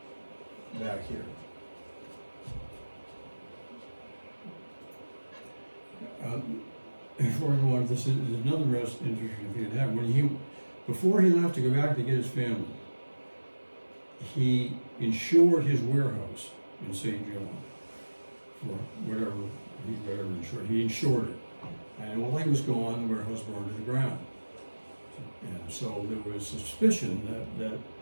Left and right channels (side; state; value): both; inverted; correlation -1.00